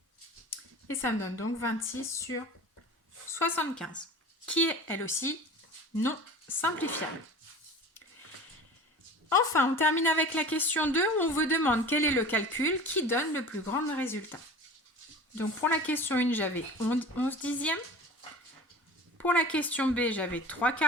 Et ça me donne donc 26 sur 75, qui est elle aussi non simplifiable. Enfin, on termine avec la question 2 où on vous demande quel est le calcul qui donne le plus grand résultat. Donc pour la question 1, j'avais 11 dixièmes. Pour la question B, j'avais 3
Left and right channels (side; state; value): both; normal; correlation 0.39